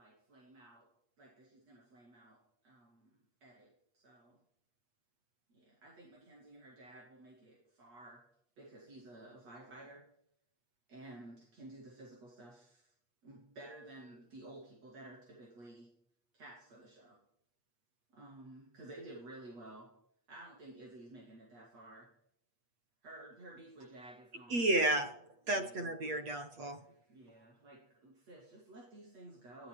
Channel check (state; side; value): late; left; 8.4 ms